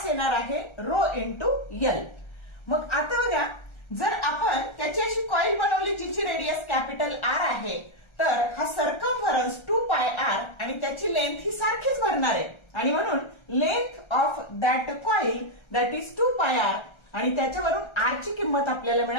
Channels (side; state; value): right; late; 1.3 ms